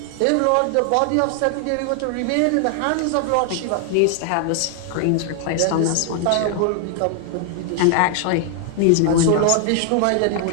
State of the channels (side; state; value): both; different; correlation 0.00